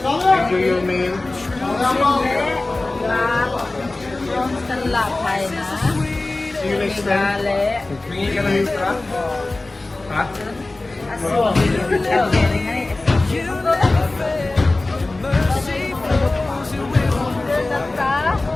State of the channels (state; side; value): quieter; right; 3.0 dB